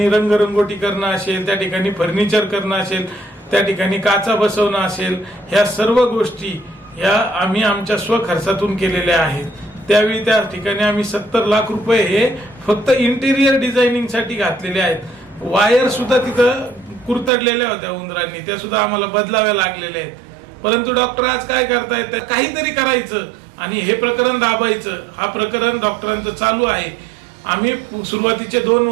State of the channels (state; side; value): drops out; left; at 17.3 s